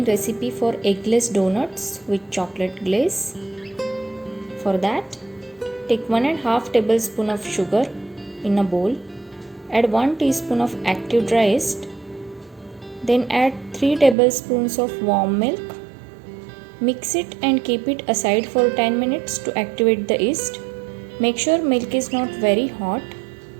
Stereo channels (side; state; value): left; drops out; at 14.2 s